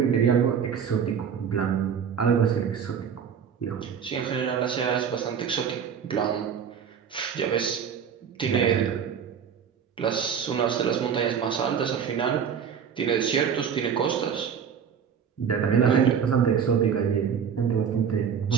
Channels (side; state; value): left; quieter; 7.4 dB